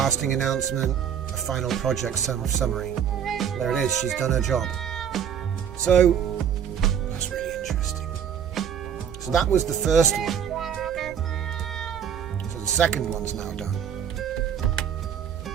announcement, a final project summary. There it is, she's done her job. So, that's really interesting. So that was the first one. So the second one's now done.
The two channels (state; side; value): quieter; left; 8.5 dB